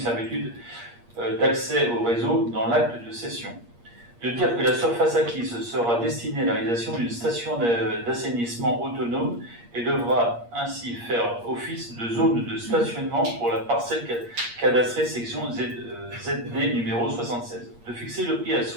d'accès au réseau dans l'acte de cession. De dire que la surface acquise sera destinée à la réalisation d'une station d'assainissement autonome et devra ainsi faire office de zone de stationnement pour la parcelle cadastrée section ZD numéro 76. De fixer le prix à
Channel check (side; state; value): left; late; 8.5 ms